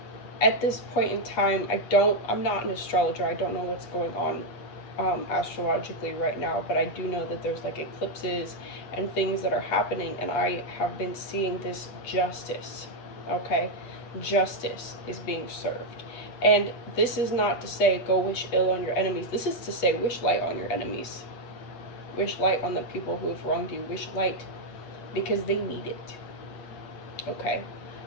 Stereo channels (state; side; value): late; right; 8.3 ms